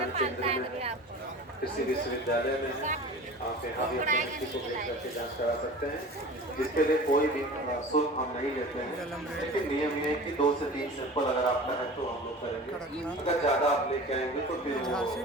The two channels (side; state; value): both; normal; correlation 0.37